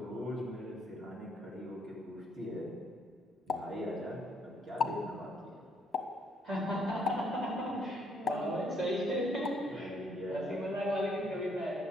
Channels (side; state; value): both; normal; correlation 0.69